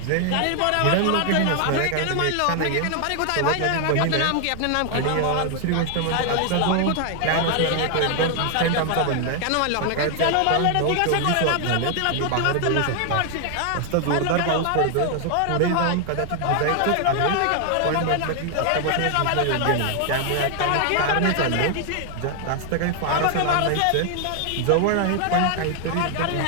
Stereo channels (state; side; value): different; both; correlation 0.00